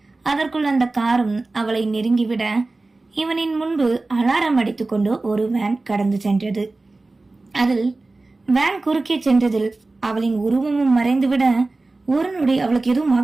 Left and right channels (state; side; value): quieter; left; 3.3 dB